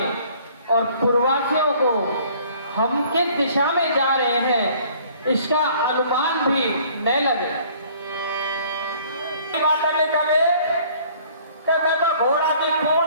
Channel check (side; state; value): both; inverted; correlation -0.55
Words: और पूर्ववासियों को हम किस दिशा में जा रहे हैं इसका अनुमान भी न लगे। बात नहीं करे कि मैं तो घोड़ा की